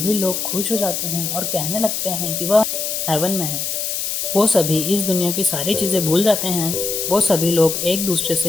लोग खुश हो जाते हैं और कहने लगते हैं कि वह हेवन में है। वो सभी इस दुनिया की सारी चीज़ें भूल जाते हैं। वो सभी लोग एक दूसरे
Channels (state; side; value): noise; left; hiss, 2 dB below the sound